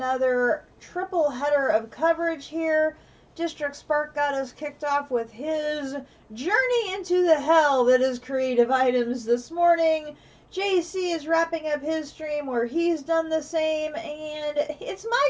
triple header of coverage here. District Spark got us kicked off with his journey into the hell that is creative items this morning. JC is wrapping up his stream where he's done the same, and it's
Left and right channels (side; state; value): both; identical; correlation 1.00